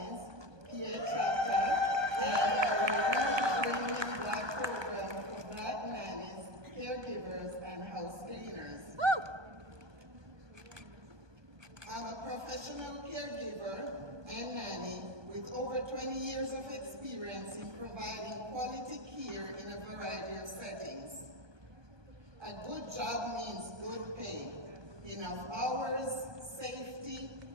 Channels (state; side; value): late; left; 1.2 ms